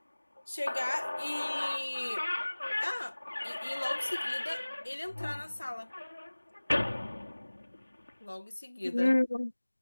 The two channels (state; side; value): inverted; both; correlation -1.00